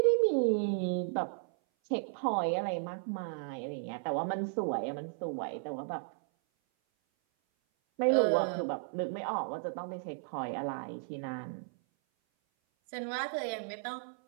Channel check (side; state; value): left; silent; 55 dB below the other